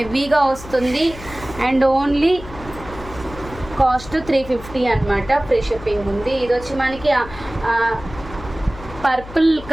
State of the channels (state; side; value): noise; left; hum, 15 dB below the sound